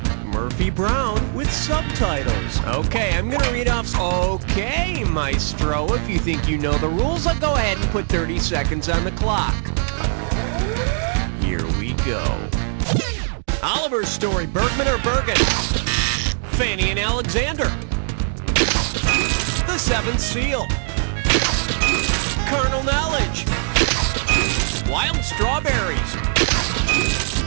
Murphy Brown with subtitles. Okay, I'm gonna read off. Okay, Maestro, if you think you know the rules, I'll go ahead and put 30 seconds on the clock. Here we go. Oliver's Story, Bergman or Bergen? Fanny and Alexander. The Seventh Seal. Carnal Knowledge. Wild Strawberries.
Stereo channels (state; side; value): silent; left; digital silence